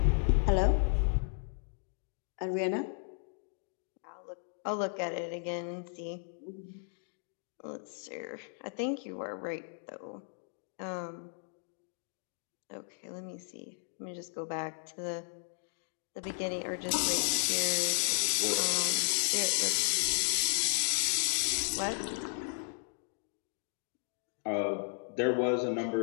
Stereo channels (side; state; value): right; silent; 55 dB below the other